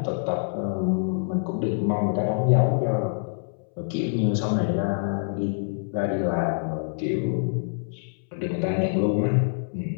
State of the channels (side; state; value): right; silent; 61 dB below the other